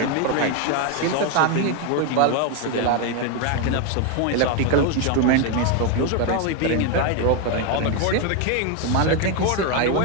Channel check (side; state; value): both; different; correlation 0.01